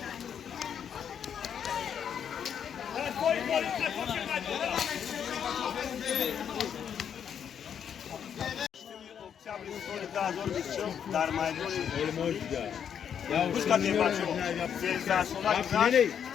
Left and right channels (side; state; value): right; quieter; 8.2 dB